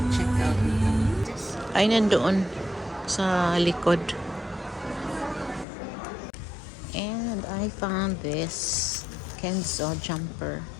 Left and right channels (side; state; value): right; drops out; at 5.7 s